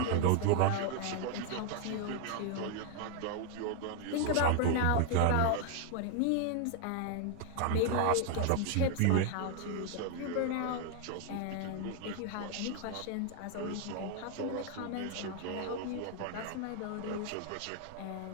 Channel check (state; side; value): different; both; correlation 0.00